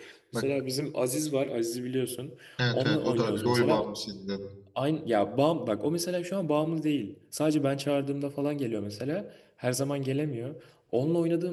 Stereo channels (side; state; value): both; identical; correlation 1.00